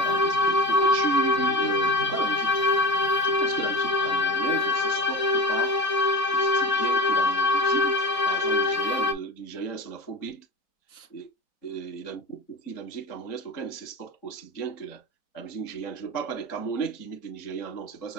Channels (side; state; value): right; late; 4.4 ms